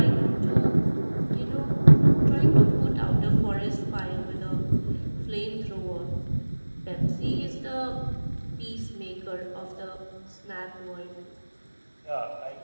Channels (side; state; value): both; inverted; correlation -1.00